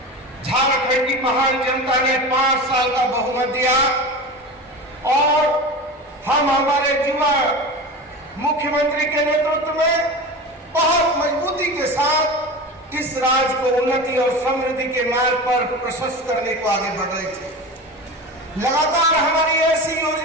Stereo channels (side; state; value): both; normal; correlation 0.29